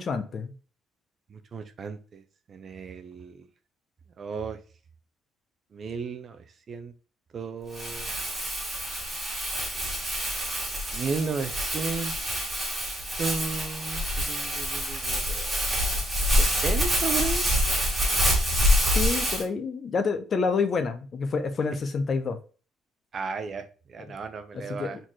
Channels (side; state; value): both; normal; correlation 0.72